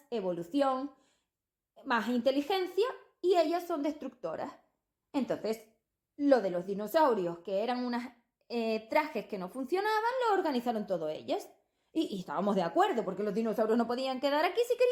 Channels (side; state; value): both; identical; correlation 1.00